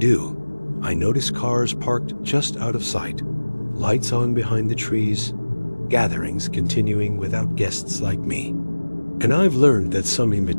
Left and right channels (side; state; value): both; inverted; correlation -1.00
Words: I notice cars parked just out of sight, lights on behind the trees, gatherings continuing without guests like me. And I've learned that some